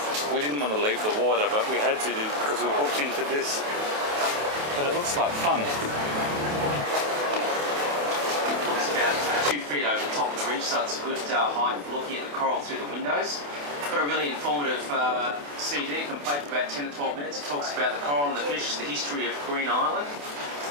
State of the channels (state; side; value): late; left; 28 ms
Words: We didn't want to leave the water, but we had to because we booked into this. But it looks like fun. It's about 2 feet over the top of the reef, so it's a good height for looking at the coral through the windows. Got a really informative CD. You can play for about 10 to 12 minutes. It talks about the coral and the fish, the history of Green Island,